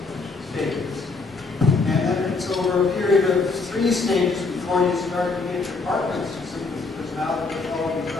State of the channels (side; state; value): right; quieter; 4.0 dB